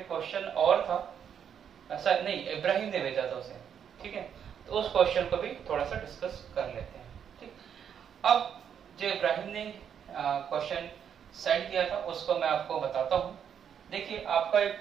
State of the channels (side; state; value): left; quieter; 8.3 dB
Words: क्वेश्चन और था, ऐसा नहीं, इब्राहिम ने भेजा था उसे, ठीक है। तो उस क्वेश्चन को भी थोड़ा सा डिस्कस कर लेते हैं, ठीक। अब जो इब्राहिम ने क्वेश्चन सेंड किया था उसको मैं आपको बताता हूँ। देखिए, आपका